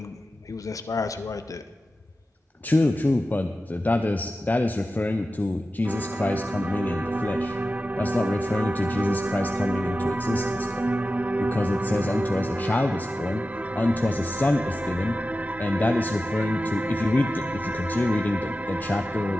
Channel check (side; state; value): both; normal; correlation 0.93